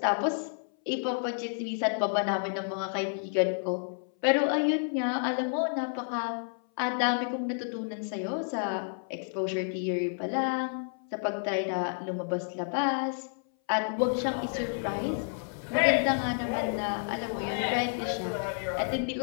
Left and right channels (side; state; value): right; silent; 58 dB below the other